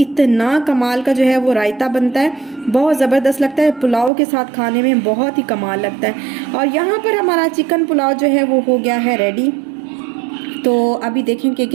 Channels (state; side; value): drops out; left; at 4.1 s